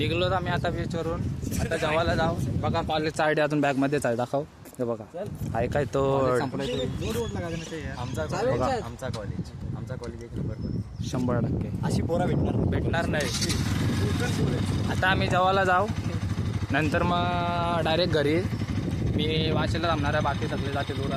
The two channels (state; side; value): identical; both; correlation 1.00